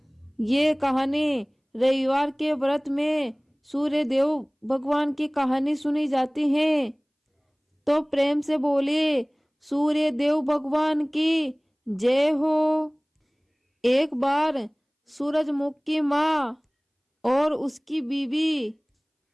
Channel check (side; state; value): both; identical; correlation 1.00